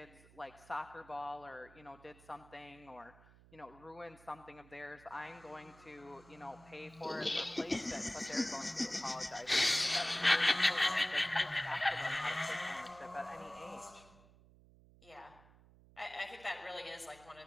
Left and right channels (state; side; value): noise; right; hum, 24 dB below the sound